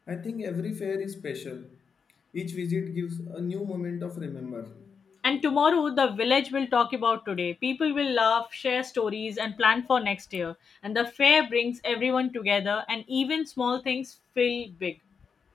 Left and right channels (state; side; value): quieter; right; 6.0 dB